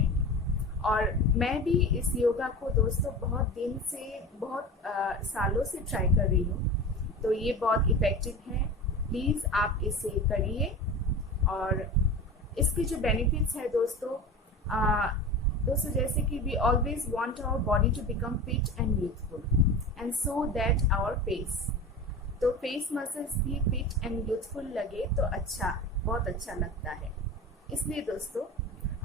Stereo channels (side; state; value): both; normal; correlation 0.31